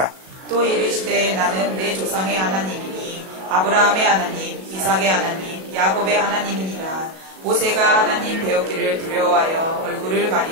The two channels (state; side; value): late; left; 37 ms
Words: 또 이르시되 나는 내 조상의 하나님이니 아브라함의 하나님 이삭의 하나님 야곱의 하나님이니라. 모세가 하나님 배웠기를 두려워하여 얼굴을